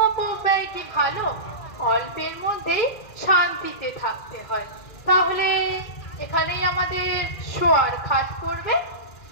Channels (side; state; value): right; late; 2.4 ms